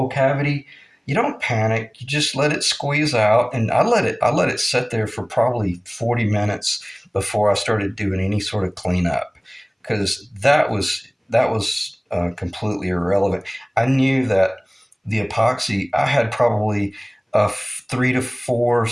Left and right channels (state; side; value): identical; both; correlation 1.00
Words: cavity, you don't panic. You just let it squeeze out, and I let it sit there for probably 40 minutes before I started doing any sort of cleanup, because that was completely irrelevant. I knew that the epoxy, I had probably a 3 to 4